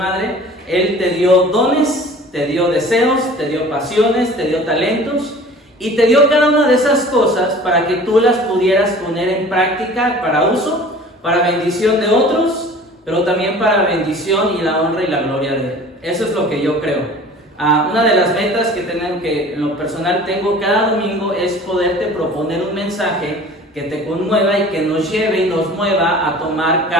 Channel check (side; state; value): both; normal; correlation 0.45